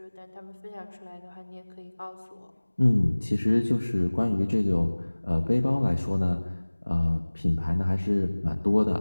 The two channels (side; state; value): both; inverted; correlation -1.00